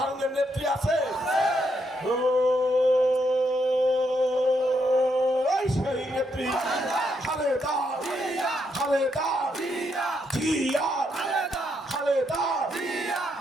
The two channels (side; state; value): both; normal; correlation 0.78